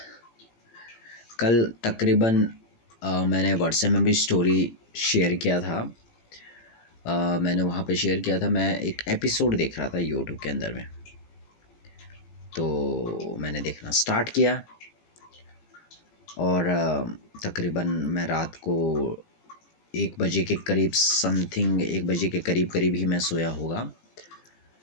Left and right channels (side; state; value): right; late; 18 ms